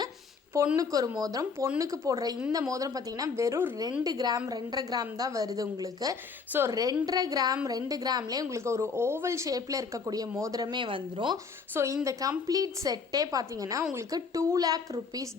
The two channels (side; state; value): right; quieter; 5.2 dB